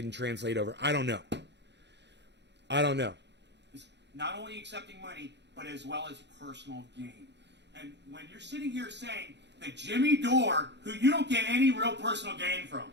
translate over. I don't know. Not only accepting money, but as well as personal gain. And when you're sitting here saying that Jimmy Dore, who you don't get any real personal gain from,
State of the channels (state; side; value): late; left; 0.51 ms